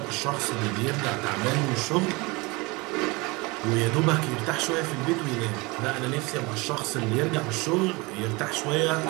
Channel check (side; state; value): left; quieter; 25.2 dB